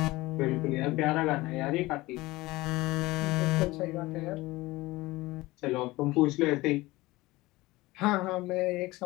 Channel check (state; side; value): quieter; right; 20.0 dB